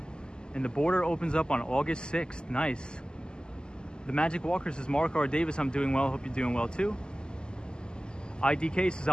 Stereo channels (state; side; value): late; right; 0.047 ms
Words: And the border opens up on August 6th, nice. The Magic Walker says, Mark R. Davis, I'm doing well, hope you're doing well too. IDK says,